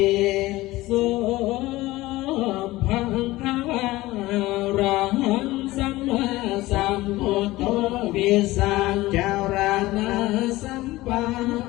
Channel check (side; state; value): right; quieter; 18.4 dB